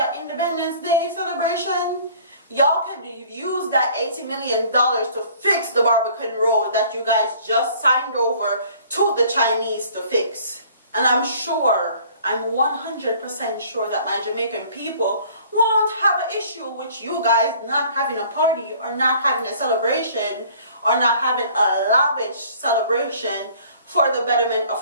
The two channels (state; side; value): inverted; both; correlation -0.53